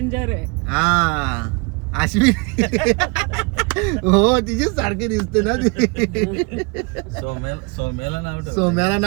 आहे. हा अश्विनी हो तिचेच सारखे दिसते ना ती. सोम्याला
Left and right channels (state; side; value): quieter; left; 30.1 dB